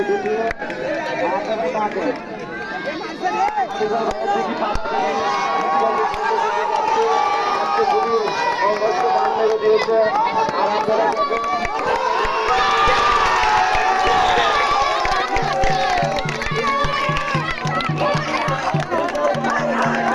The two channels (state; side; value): identical; both; correlation 1.00